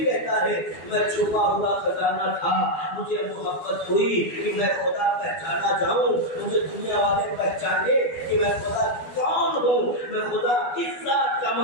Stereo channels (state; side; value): late; right; 12 ms